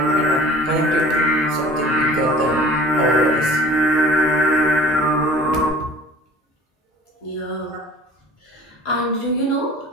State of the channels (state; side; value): normal; both; correlation 0.46